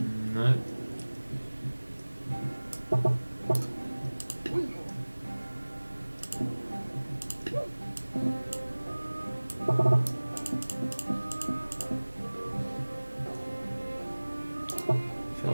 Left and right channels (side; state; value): both; inverted; correlation -1.00